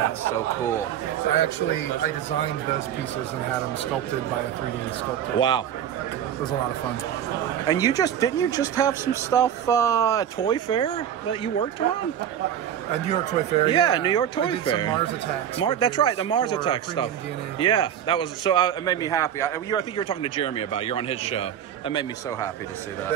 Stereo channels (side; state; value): left; quieter; 9.8 dB